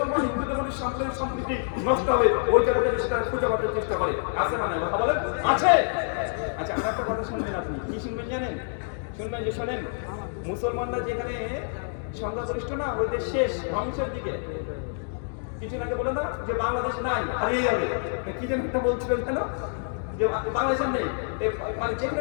হিন্দুদের মধ্যে সাম্প্রদায়িক সম্প্রীতি নষ্ট হবে ওই জায়গাটা সেটা খুঁজে পাওয়ার চেষ্টা করে। আছে না নাই কথা বলেন? আছে। আচ্ছা, আমার একটা কথা শুনবেন, আপনি কি শুনবেন জানেন? শুনবেন যে শোনেন, মুসলমানরা যেখানে সংখ্যাগরিষ্ঠ না, ওই দেশ শেষ ধ্বংসের দিকে। কিছু আগে বলে না যে বাংলাদেশ নাই, হারিয়ে যাবে, কি যেন একটা বলছিল কেন যে বাংলাদেশের নেই, মানে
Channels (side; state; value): right; silent; digital silence